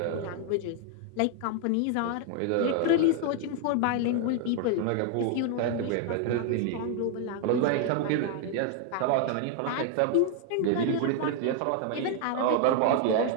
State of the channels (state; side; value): different; both; correlation 0.00